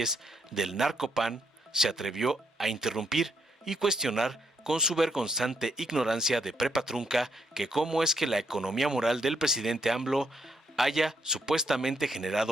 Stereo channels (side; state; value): both; normal; correlation 0.75